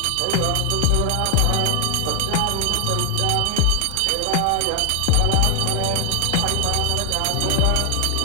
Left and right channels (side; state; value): both; different; correlation 0.00